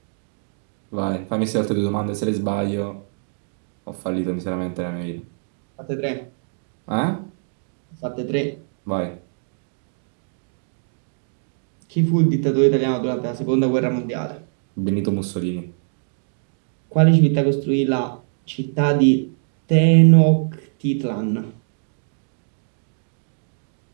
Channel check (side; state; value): left; silent; digital silence